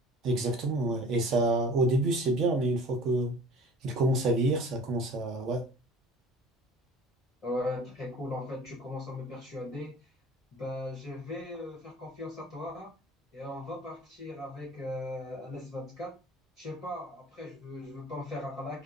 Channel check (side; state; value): both; normal; correlation 0.45